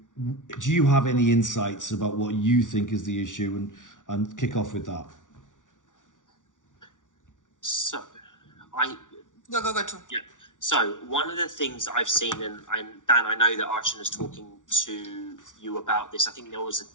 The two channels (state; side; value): late; right; 0.87 ms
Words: do you have any insights about what you think is the issue, and kick off with that? So, Go too. Yeah. So one of the things that I've seen, and Dan, I know that Archon is talking to you about this. I think